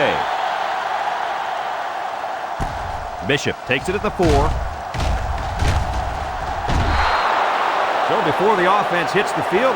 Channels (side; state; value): both; identical; correlation 1.00